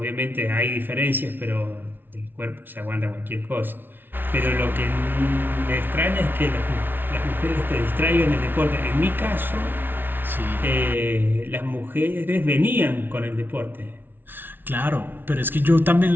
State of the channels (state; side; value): late; left; 0.098 ms